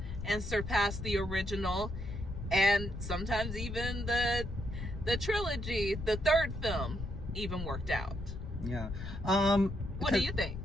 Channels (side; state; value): left; noise; rumble, 8 dB below the sound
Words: and surpass the original, and sometimes even the trilogy, the third film, even worked out. Yeah. What do you think?